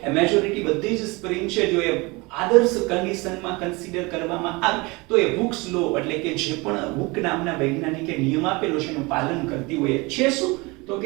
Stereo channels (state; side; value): quieter; left; 25.3 dB